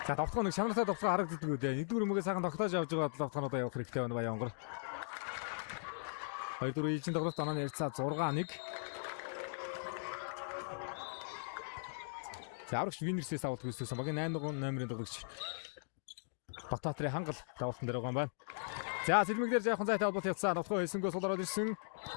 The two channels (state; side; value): silent; right; digital silence